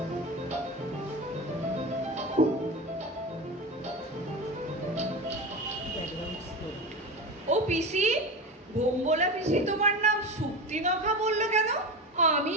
ও পিসি, ভোম্বলা পিসি তোমার নাম শক্তিনখা বললো কেন? আমি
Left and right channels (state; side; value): normal; both; correlation 0.25